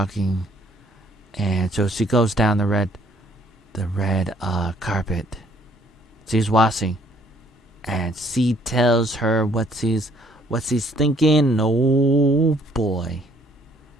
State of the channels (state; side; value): normal; both; correlation 0.63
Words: and so she goes down the red carpet. She's washing, and she tells her what she's thinking. Oh boy,